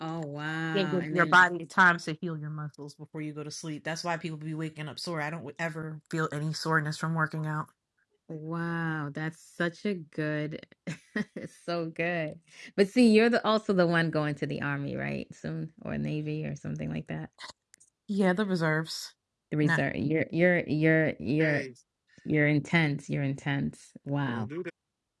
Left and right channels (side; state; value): both; identical; correlation 1.00